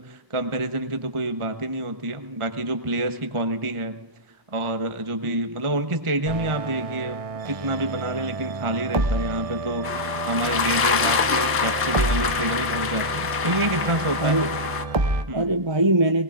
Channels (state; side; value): late; left; 1.0 ms